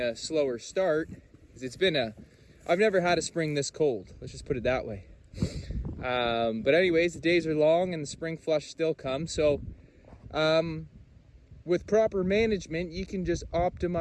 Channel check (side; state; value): both; identical; correlation 1.00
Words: slower start, because I've never had a spring this cold. Let's just put it that way. But anyways, the days are long and the spring flush still comes. So with proper management, you can just